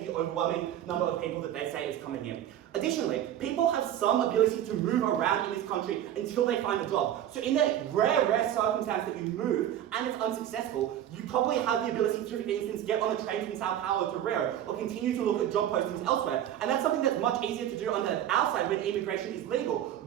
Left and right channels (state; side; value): quieter; left; 11.2 dB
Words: the overwhelming number of people that they say is coming in. Additionally, people have some ability to move around in this country until they find a job. So in that rare circumstance that you move and it's unsuccessful, you probably have the ability to, for instance, get on a train from Sao Paulo to Rio, or continue to look at job postings elsewhere. And that's something that's much easier to do on our side when immigration is legal,